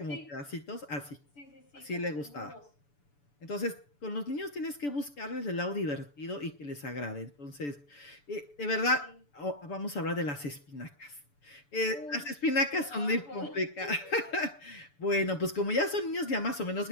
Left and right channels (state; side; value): late; right; 6.9 ms